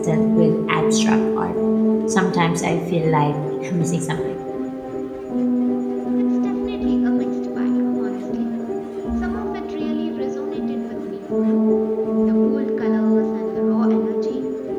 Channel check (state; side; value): identical; both; correlation 1.00